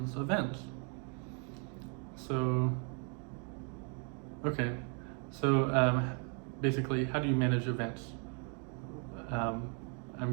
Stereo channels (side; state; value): left; quieter; 38.9 dB